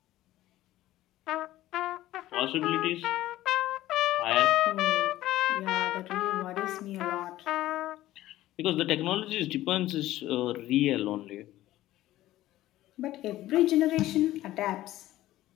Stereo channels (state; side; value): quieter; right; 15.1 dB